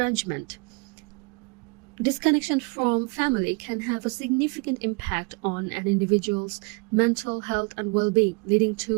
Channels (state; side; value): quieter; left; 30.4 dB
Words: Disconnection from family can have a significant impact on an individual's mental health and well-being, leading